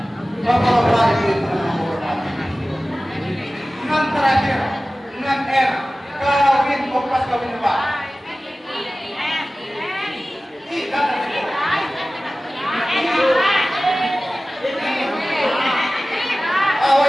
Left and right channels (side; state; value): both; normal; correlation 0.97